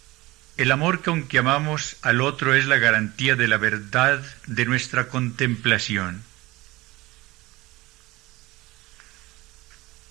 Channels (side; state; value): left; quieter; 20.0 dB